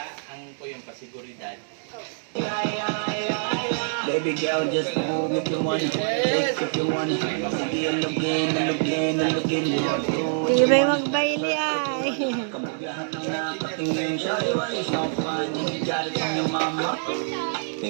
Ang po yung pasiguridad. Baby girl, just move if you want it. Take if you want it. Sige, alugin. Tibay magbaili ay. Kabugahan ng nakatingin siya. Iwan is not fun. Galit ang iyong mama.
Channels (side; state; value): left; silent; digital silence